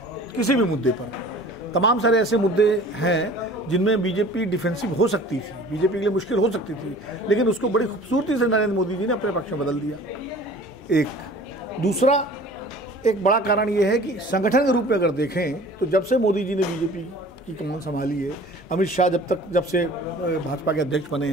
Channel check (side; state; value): both; normal; correlation 0.45